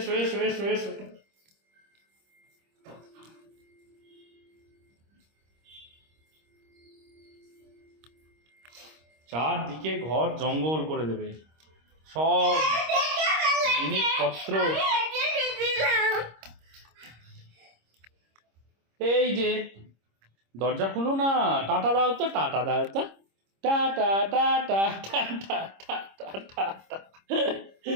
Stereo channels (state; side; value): late; left; 26 ms